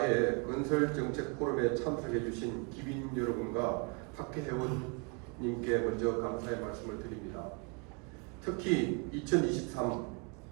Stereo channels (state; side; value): quieter; left; 31.9 dB